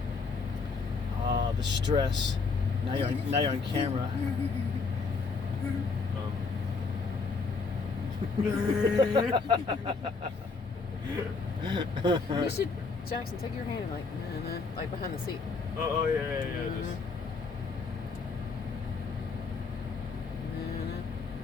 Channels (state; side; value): quieter; right; 4.5 dB